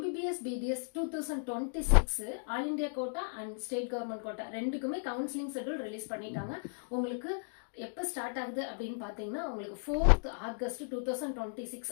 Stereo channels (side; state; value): right; silent; digital silence